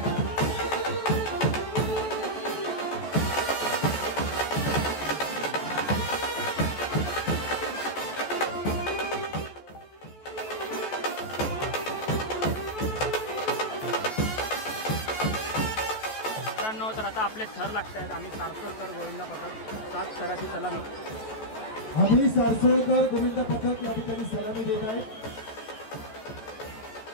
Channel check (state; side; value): late; right; 14 ms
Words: तर आता आपले थर लागत आहेत. आम्ही सारसोलकर गोविंदा पथक 7 थराची सलामी. आम्ही सारसोलकर गोविंदा पथक या ठिकाणी सलामी देत आहे.